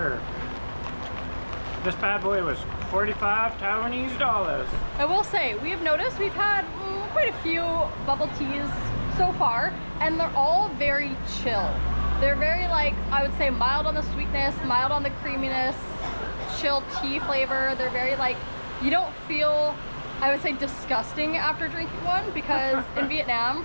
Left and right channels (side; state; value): both; inverted; correlation -1.00